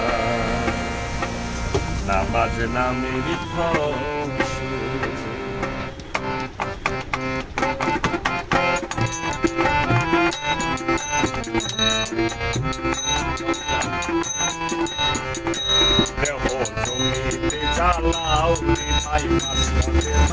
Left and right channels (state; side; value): identical; both; correlation 1.00